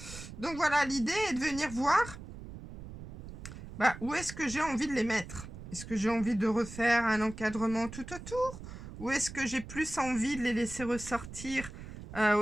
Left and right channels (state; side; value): noise; right; rumble, 12 dB below the sound